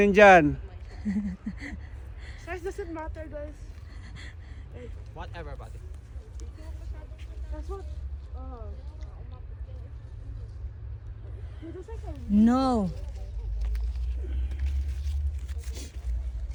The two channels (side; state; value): both; identical; correlation 1.00